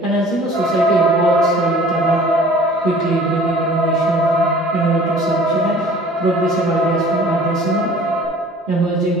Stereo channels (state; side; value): normal; both; correlation 0.49